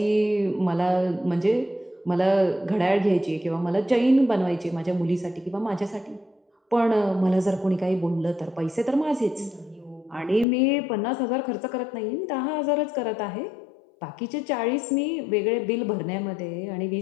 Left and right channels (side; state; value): right; drops out; at 10.5 s